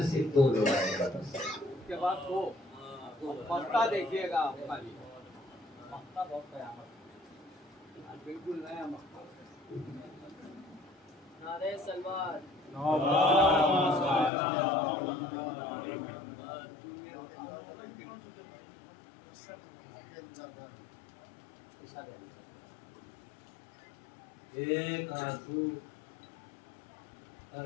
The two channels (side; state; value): right; drops out; at 14.3 s